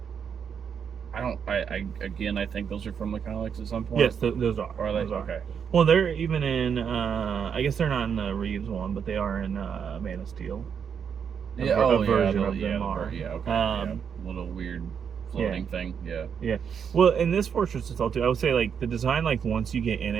I think those are from the comics at some point. Yes, those are. Are they? Those are. Okay. Well, they're even in. I guess they're not in the Reeves one, but they are in Man of Steel. A version of them are. Yeah. Okay. Little weird floating thing. Yeah. Yeah. Well, in this Fortress of Solitude, I would say like the design, like once you get in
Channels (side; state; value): left; quieter; 7.2 dB